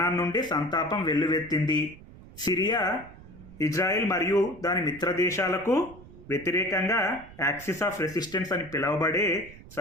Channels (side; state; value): right; noise; rumble, 19 dB below the sound